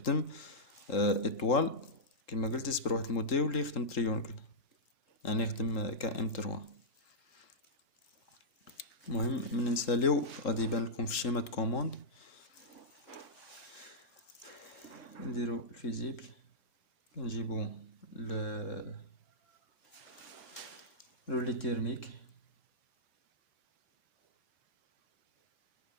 ايطوال كما قلت، يصبر واحد المده يولي يخدم تريونكل، يعني يخدم KM3. المهم من نساليو غادي يبان لكم في الشيمات كوموند. نديرو الفيزيبل، كنجيبو لي تيرميك،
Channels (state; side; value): late; right; 3.7 ms